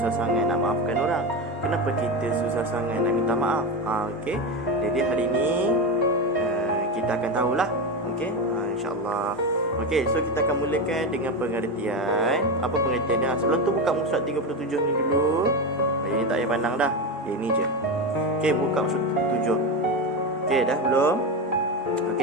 sangat nak maafkan orang? Kenapa kita susah sangat nak minta maaf? Okey. Jadi hari ni kita akan tahulah. Okey. Insya-Allah. Okey, so kita akan mulakan dengan pengertian. Apa pengertiannya? Sebelum tu buka muka surat 37 ni dulu. Ini tak payah pandang dah. Ini je. Okey, buka muka surat 7. Okey, dah belum?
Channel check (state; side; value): normal; both; correlation 0.17